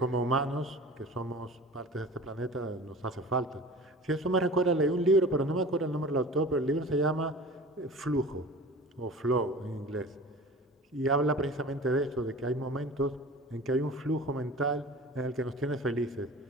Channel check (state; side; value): normal; both; correlation 0.39